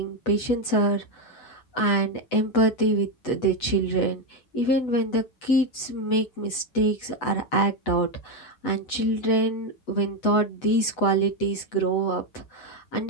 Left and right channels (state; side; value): late; right; 8.0 ms